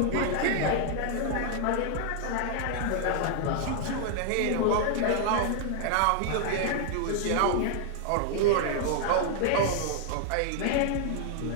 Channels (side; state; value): both; different; correlation 0.00